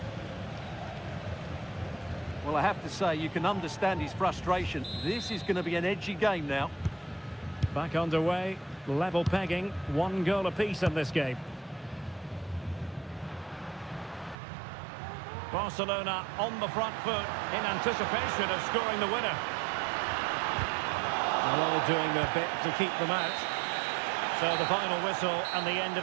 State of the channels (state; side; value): drops out; left; at 14.4 s